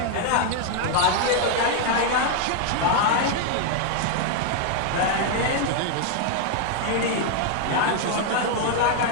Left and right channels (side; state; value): both; different; correlation 0.00